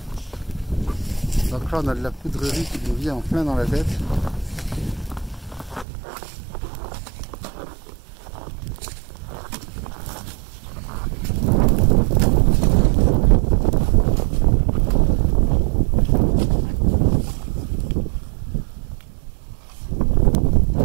Donc là, on a de la poudrerie qui nous vient en plein dans la tête.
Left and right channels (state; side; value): drops out; left; at 5.9 s